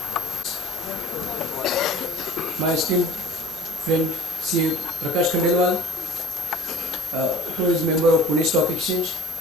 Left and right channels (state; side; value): normal; both; correlation 0.44